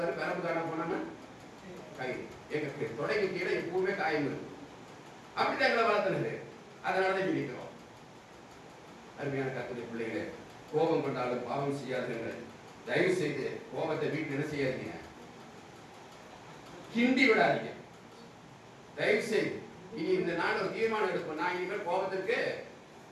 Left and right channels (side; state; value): both; identical; correlation 1.00